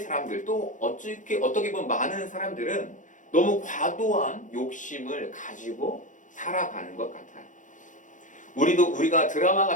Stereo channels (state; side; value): late; right; 0.37 ms